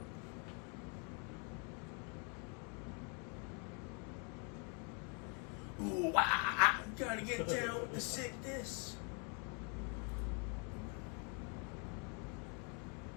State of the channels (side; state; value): right; quieter; 37.0 dB